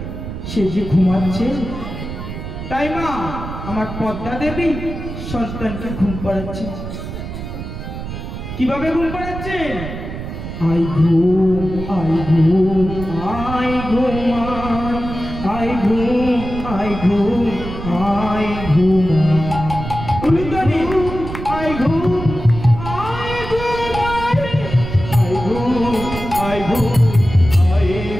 সে যে ঘুমাচ্ছে, তাই মা আমার পদ্মা দেবী সন্তানকে ঘুম পাড়াচ্ছে। কিভাবে ঘুম পাড়াচ্ছে? আই ঘুম আই ঘুম আই ঘুমান, আই ঘুম আই ঘুম আই ঘুম, উলুদানি আই ঘুম আই ঘুমাই, আই ঘুম আই ঘুম আই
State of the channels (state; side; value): noise; right; rumble, 8 dB below the sound